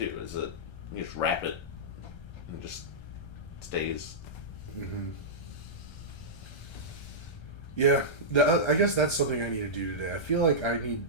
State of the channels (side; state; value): right; late; 1.3 ms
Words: is that you just wrap it and it just stays. Mm-hmm. Yeah, I guess that's something I need to do today. I feel like I need